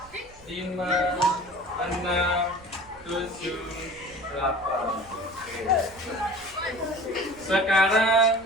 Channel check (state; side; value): noise; right; rumble, 23 dB below the sound